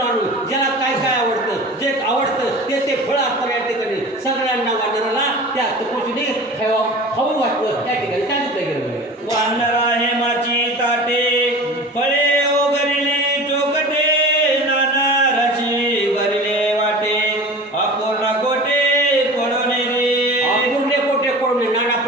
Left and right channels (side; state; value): both; normal; correlation 0.37